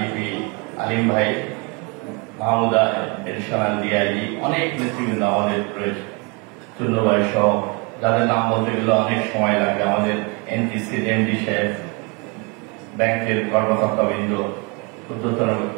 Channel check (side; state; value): left; quieter; 30.3 dB